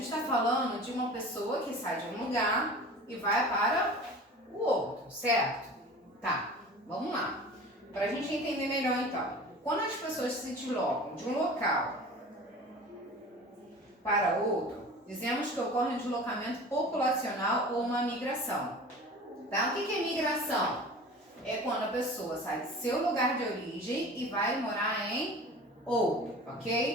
está falando de uma pessoa que sai de um lugar e vai para o outro, certo? Tá, vamos lá. Para a gente entender melhor então. Quando as pessoas se deslocam de um local para outro, dizemos que ocorre um deslocamento populacional ou uma migração. Tá? O que é migração? É quando a pessoa sai do seu lugar de origem e vai morar em outro,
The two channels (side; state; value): both; normal; correlation 0.39